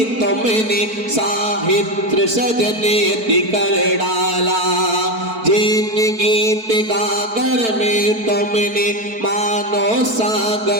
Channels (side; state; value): left; late; 4.5 ms